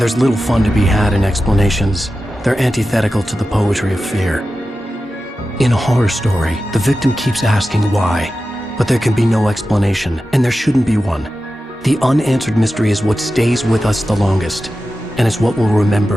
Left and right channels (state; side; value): normal; both; correlation 0.93